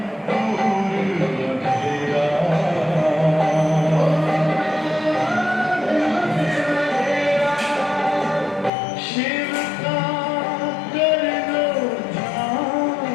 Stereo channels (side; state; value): right; drops out; at 8.7 s